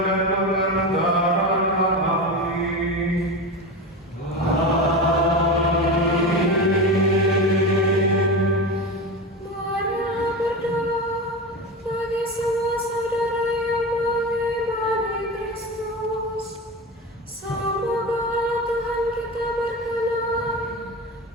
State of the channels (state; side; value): normal; both; correlation 0.23